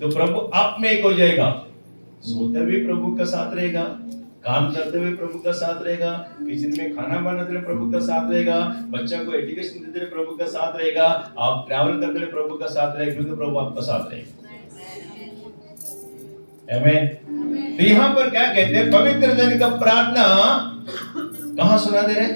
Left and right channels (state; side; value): inverted; both; correlation -1.00